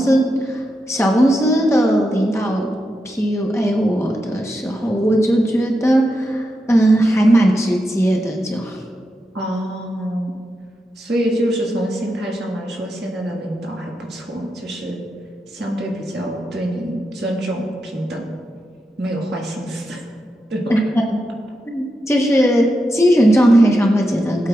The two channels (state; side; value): normal; both; correlation 0.87